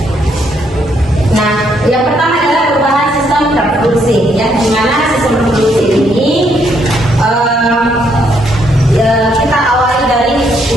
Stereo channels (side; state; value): both; normal; correlation 0.73